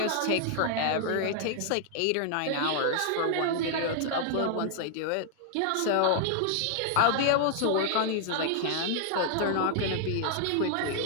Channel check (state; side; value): different; both; correlation -0.01